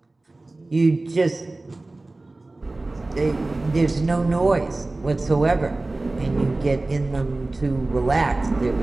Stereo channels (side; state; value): left; quieter; 3.0 dB